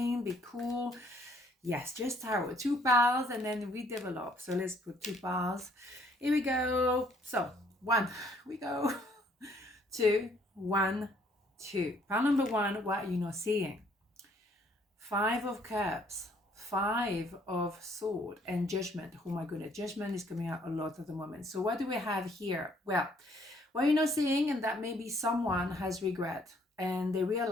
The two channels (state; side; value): normal; both; correlation 0.64